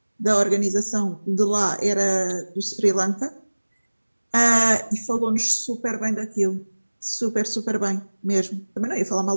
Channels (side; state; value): both; inverted; correlation -1.00